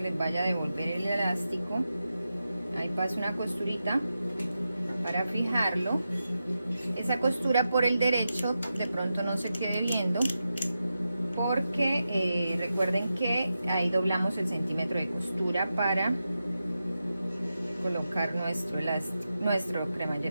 les vaya a devolver el elástico. Ahí paso una costurita para fijarlo. Esa costura por el derecho de pronto no se quede viendo, porque recuerden que ahí doblamos el centímetro de costura para colocar nuestro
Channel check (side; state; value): both; inverted; correlation -0.90